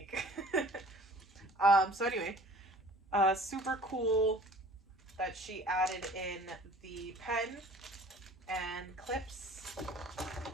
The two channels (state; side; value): normal; both; correlation 0.49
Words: So anyway, super cool that she added in the pen and clips,